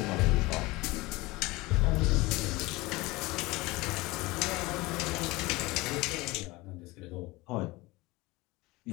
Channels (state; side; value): quieter; right; 21.7 dB